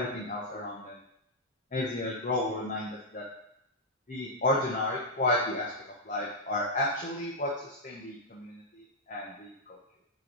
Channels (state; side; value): normal; both; correlation -0.05